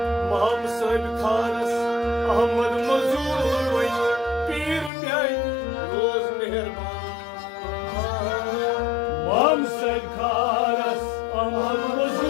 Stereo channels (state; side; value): drops out; right; at 4.9 s